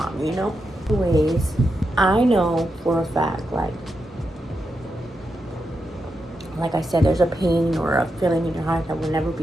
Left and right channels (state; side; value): normal; both; correlation 0.86